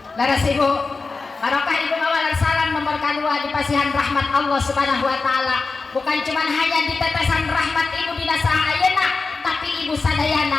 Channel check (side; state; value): right; quieter; 4.2 dB